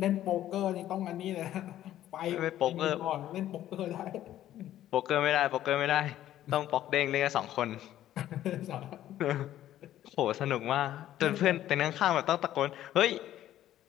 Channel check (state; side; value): quieter; right; 12.6 dB